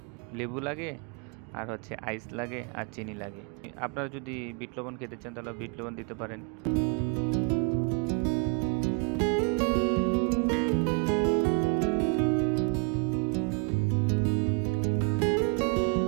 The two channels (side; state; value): left; quieter; 34.9 dB